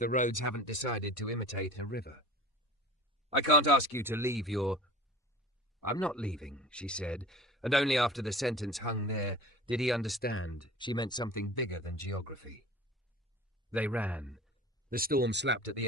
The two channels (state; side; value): normal; both; correlation 0.39